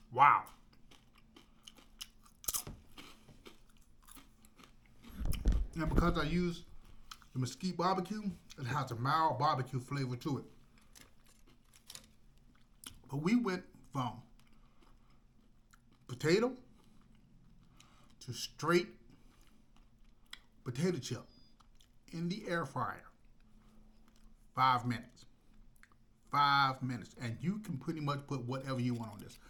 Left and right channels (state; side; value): identical; both; correlation 1.00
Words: Wow. And because I use the Mesquite barbecue, it has a mild barbecue flavor to it. But we went from potato to straight potato chip in the air fryer. 5 minutes. 5 minutes. And you can pretty much put whatever you want on this.